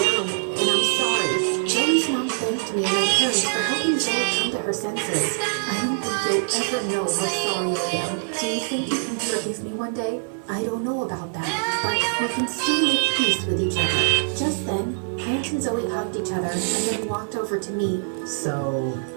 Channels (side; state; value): left; silent; digital silence